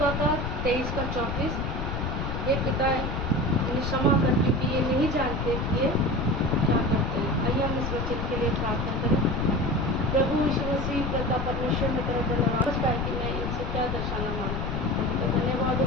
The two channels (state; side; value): noise; left; rumble, 2 dB below the sound